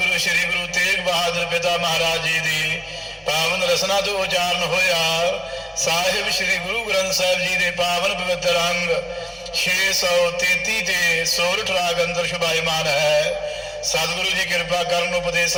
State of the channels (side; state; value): both; identical; correlation 1.00